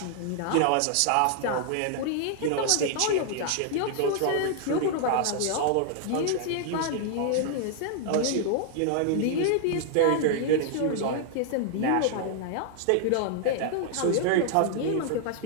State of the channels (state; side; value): different; both; correlation -0.01